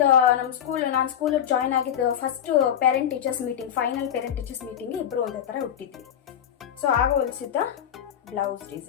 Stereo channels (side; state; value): right; quieter; 9.6 dB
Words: ನಮ್ಮ ನಾನು ಸ್ಕೂಲ್ ಜಾಯ್ನ್ ಆಗಿದ್ದು first parent teachers meeting, final parent teachers meeting ಇಬ್ರು ಒಂದೇ ತರ ಹುಟ್ಟಿದ್ವಿ. ಸೊ ಆಗ ಹೊಲಿಸಿದ್ದ ಬ್ಲೌಸ್